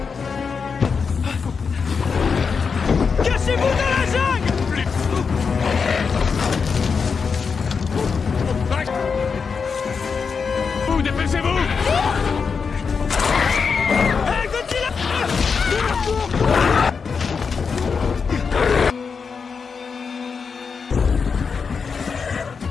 Cachez-vous dans la jungle! Vous, dépêchez-vous! Hey, Godzilla!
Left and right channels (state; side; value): quieter; right; 5.6 dB